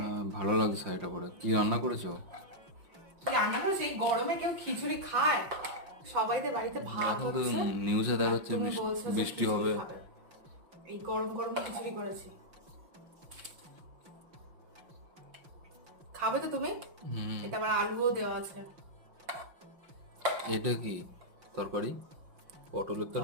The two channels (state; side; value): late; left; 5.7 ms